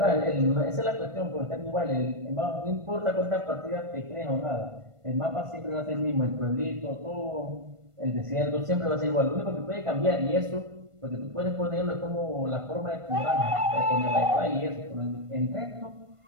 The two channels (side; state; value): left; late; 1.5 ms